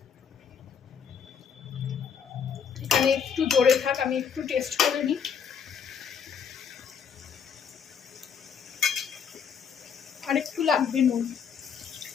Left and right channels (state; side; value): quieter; right; 7.1 dB